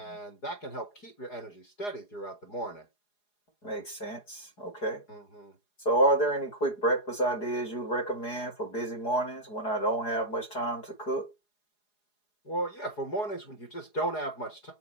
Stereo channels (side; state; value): right; late; 4.8 ms